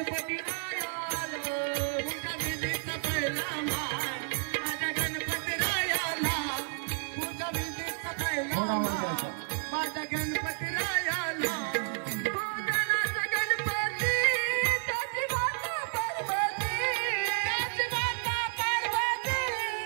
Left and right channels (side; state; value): left; silent; 57 dB below the other